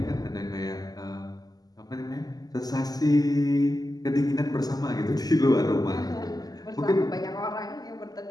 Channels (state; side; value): late; right; 0.18 ms